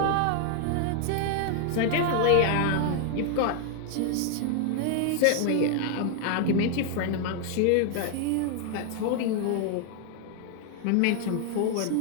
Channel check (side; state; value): both; different; correlation 0.00